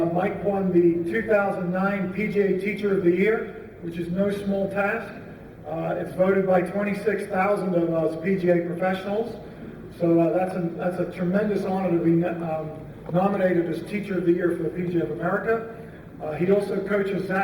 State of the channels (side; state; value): both; identical; correlation 1.00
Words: Mike won the 2009 Pga Teacher of the Year, which is no small task. It's voted by 26,000 of us PGA professionals. So that's a tremendous honor to be nominated as Teacher of the Year for the PGA of America. He also coaches